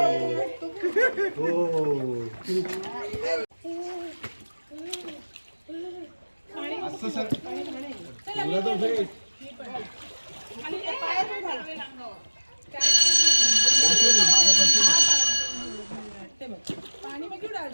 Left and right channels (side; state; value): both; inverted; correlation -1.00